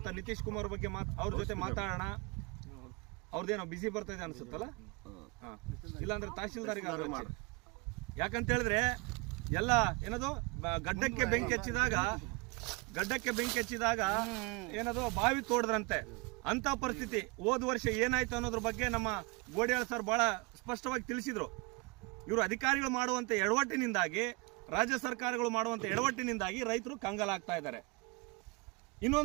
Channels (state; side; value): quieter; left; 28.4 dB